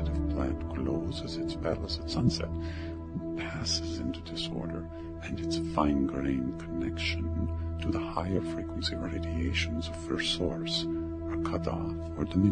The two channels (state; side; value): identical; both; correlation 1.00